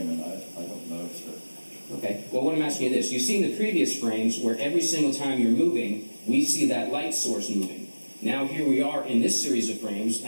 and I don't know, sir. Okay, well, what I'm asking you this. You've seen the previous frames where every single time you're moving, we see that light source moving. Now here we are in this series of frames,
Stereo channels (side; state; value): both; inverted; correlation -1.00